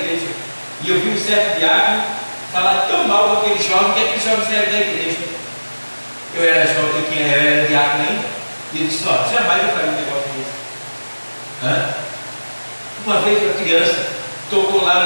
E eu vi um certo diácono falar tão mal daquele jovem que aquele jovem saiu da igreja. Eu era jovem, eu era diácono ainda, e ele disse: ó, jamais eu faria um negócio desse. Uma vez uma criança tocou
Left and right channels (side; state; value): both; inverted; correlation -1.00